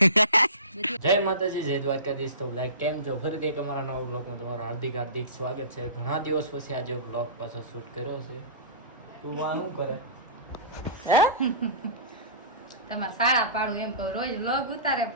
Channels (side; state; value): both; inverted; correlation -0.34